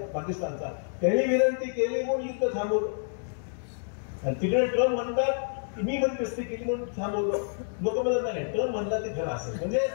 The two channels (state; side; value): silent; right; digital silence